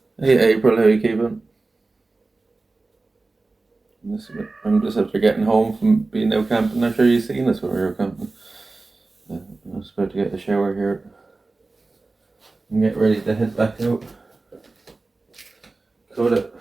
Hey April, how you keeping? I'm just after getting home from being out camping. I'm sure you've seen us when we were camping. I was about to get a shower here and get ready to head back out. Coda,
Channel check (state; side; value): quieter; left; 3.5 dB